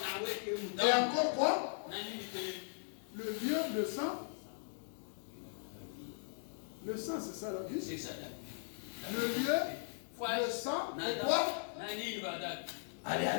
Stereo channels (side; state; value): right; silent; digital silence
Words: et encore quoi? Le lieu, le sang. Le sang, c'est ça la vie. C'est ça. Le lieu, le sang et quoi?